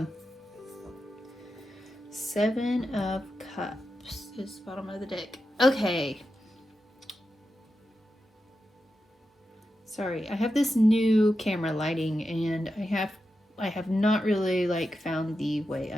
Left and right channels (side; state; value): both; normal; correlation 0.89